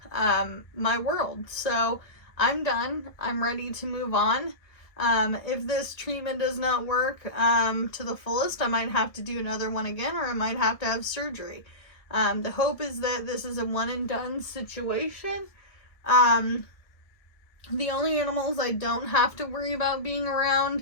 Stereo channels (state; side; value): late; right; 1.6 ms